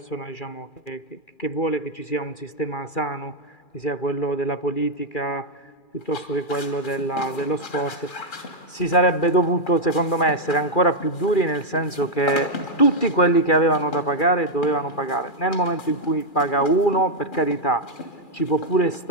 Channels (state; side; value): late; right; 2.4 ms